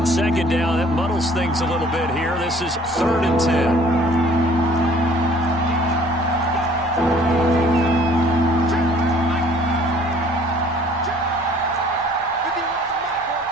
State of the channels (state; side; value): normal; both; correlation 0.55